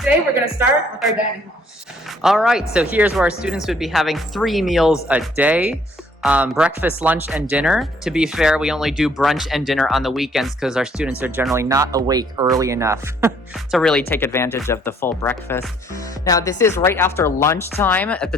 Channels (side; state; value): both; normal; correlation 0.63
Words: we're going to start with our dining hall. All right, so here's where our students would be having 3 meals a day. Breakfast, lunch, and dinner. To be fair, we only do brunch and dinner on the weekends because our students are generally not awake early enough to really take advantage of the full breakfast. Now, this is right after lunchtime at the